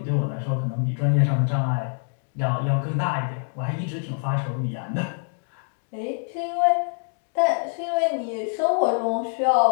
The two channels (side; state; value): right; silent; digital silence